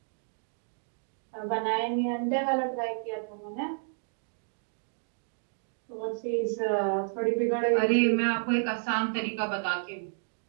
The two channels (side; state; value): left; silent; digital silence